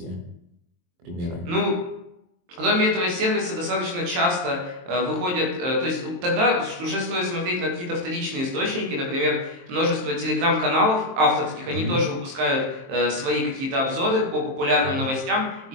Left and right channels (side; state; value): left; late; 23 ms